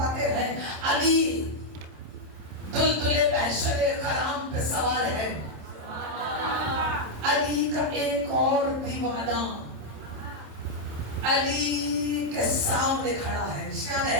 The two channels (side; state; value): left; late; 27 ms